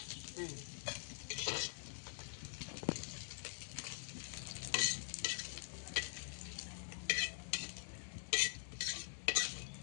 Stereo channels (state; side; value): silent; right; digital silence